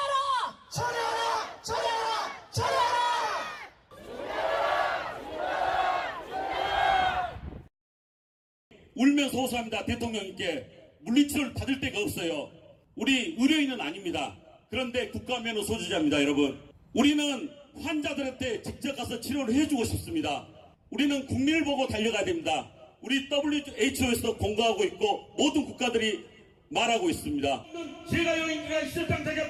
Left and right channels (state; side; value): identical; both; correlation 1.00